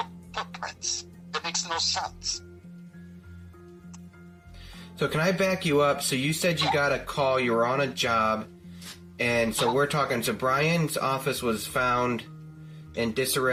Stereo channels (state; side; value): identical; both; correlation 1.00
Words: footprints? That makes no sense. So can I back you up? So you said you got a call, you were on a job, and so we're talking, so Bryan's office was found in